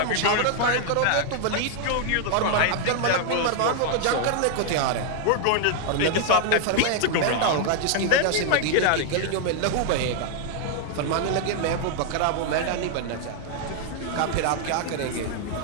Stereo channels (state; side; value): different; both; correlation 0.00